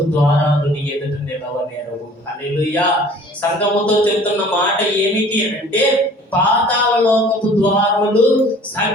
ద్వారాలు నీ ఎదుట నిలవనేరవు. హల్లెలూయా. సంఘముతో చెప్తున్న మాట ఏమిటి అంటే, పాతాళ లోకపు ద్వారములు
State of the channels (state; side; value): normal; both; correlation 0.50